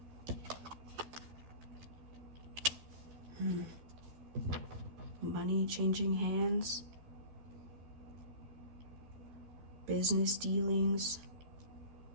Money changing hands. Business dealings.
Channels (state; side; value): late; left; 12 ms